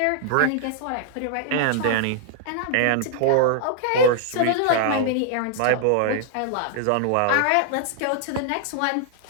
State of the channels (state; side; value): different; both; correlation -0.01